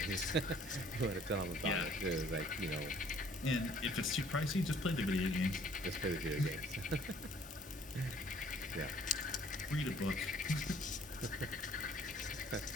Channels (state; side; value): normal; both; correlation 0.58